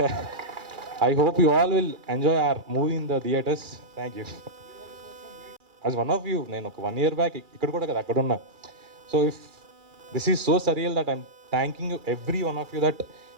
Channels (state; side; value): late; left; 2.4 ms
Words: I hope you all will enjoy hour movie in the theatres. Thank you. As one of you నేను ఒక 1 year back ఇక్కడ కూడా కదా అక్కడ ఉన్నా. So if this is so surreal that I'm thanking you every one of you that